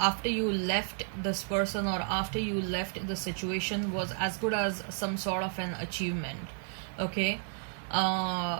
you left this person, or after you left the situation, was as good as some sort of an achievement. Okay,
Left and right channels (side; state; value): left; silent; 56 dB below the other